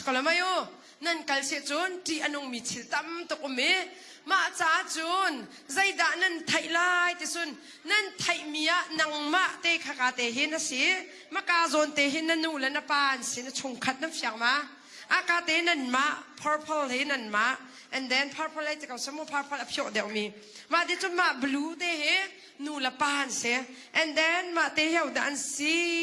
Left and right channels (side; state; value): both; identical; correlation 1.00